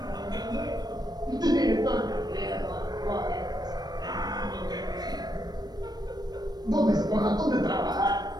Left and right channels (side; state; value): left; late; 0.19 ms